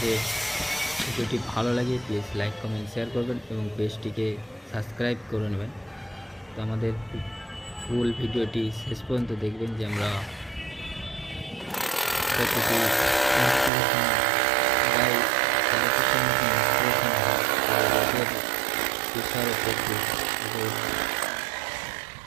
ভিডিওটি ভালো লাগে প্লিজ লাইক কমেন্ট শেয়ার করবেন এবং পেজটিকে সাবস্ক্রাইব করে নেবেন। তো আমাদের ফুল ভিডিওটি শেষ পর্যন্ত দেখবেন যে আমরা কতটি ইনস্টলেশন প্রায় 13 ফুটের মতো ইনস্টলেশন হয়। রোদের প্রেশারও প্রচুর,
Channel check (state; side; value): drops out; left; at 13.7 s